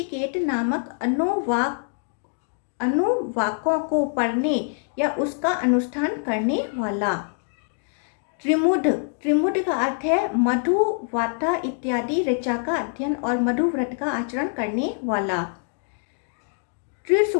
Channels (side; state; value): right; silent; 62 dB below the other